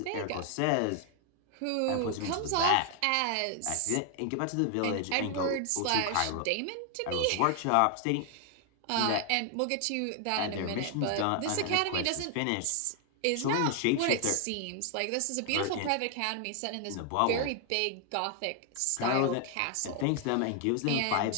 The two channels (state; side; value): different; both; correlation 0.00